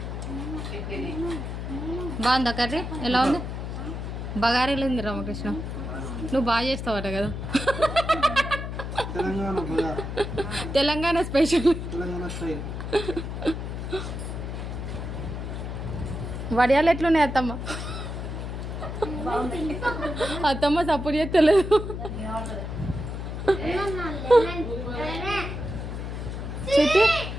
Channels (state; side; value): noise; left; hum, 5 dB below the sound